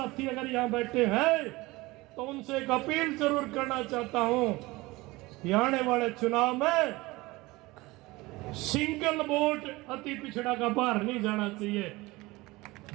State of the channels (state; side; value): quieter; left; 21.3 dB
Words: अगर यहां बैठे हैं तो उनसे एक अपील जरूर करना चाहता हूं कि आने वाले चुनाव में सिंगल वोट अति पिछड़ा का बाहर नहीं जाना चाहिए,